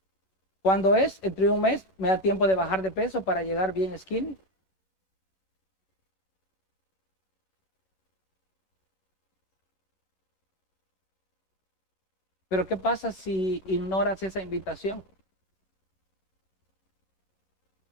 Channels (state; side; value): late; right; 11 ms